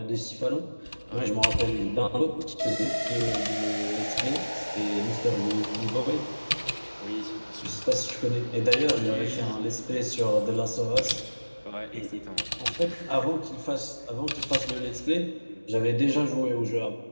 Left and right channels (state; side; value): inverted; both; correlation -1.00